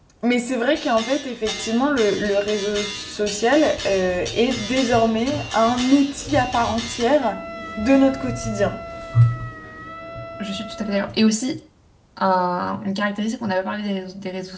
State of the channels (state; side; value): identical; both; correlation 1.00